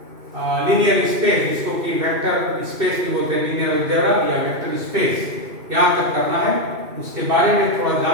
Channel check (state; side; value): late; left; 2.7 ms